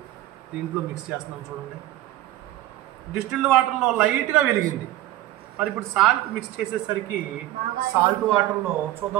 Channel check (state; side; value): quieter; left; 15.1 dB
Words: దీంట్లో మిక్స్ చేస్తున్నాం. చూడండి, డిస్టిల్డ్ వాటర్లో లైట్గా వెలిగింది. మరి ఇప్పుడు సాల్ట్ మిక్స్ చేసేసరికి సాల్ట్ వాటర్లో